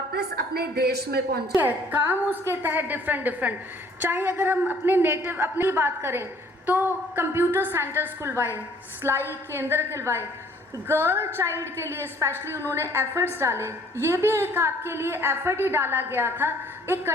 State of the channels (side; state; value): both; normal; correlation 0.58